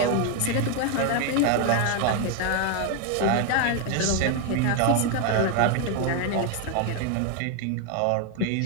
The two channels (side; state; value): both; different; correlation 0.01